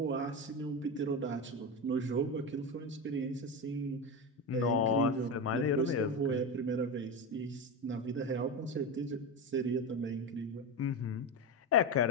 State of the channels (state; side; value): normal; both; correlation 0.17